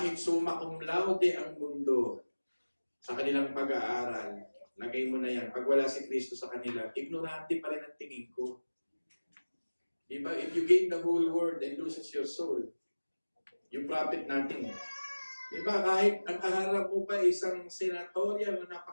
summa cum laude ang mundo sa kanilang pag-aaral, lagay mo na yan. Pag wala si Kristo sa kanila, ignorante pa rin ang tingin ko. Diba? If you gain the whole world and loses your soul, you profit nothing. Diba? Kahit ang kaharap mo pa isang senatorya na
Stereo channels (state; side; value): inverted; both; correlation -1.00